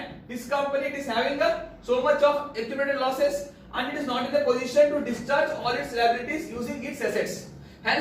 this company it is having so much of accumulated losses and it is not in the position to discharge all its liabilities using its assets.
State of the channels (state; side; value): identical; both; correlation 1.00